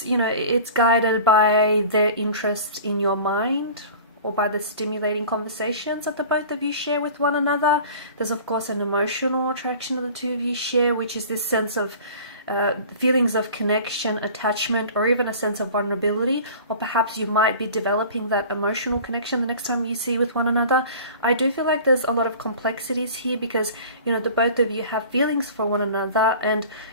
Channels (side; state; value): both; inverted; correlation -0.42